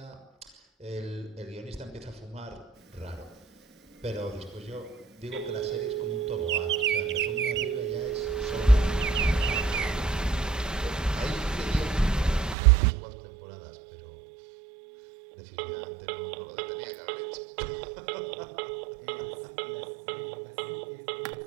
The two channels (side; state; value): left; drops out; at 12.6 s